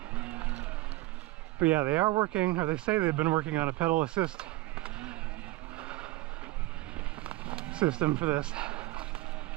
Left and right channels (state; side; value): quieter; left; 19.2 dB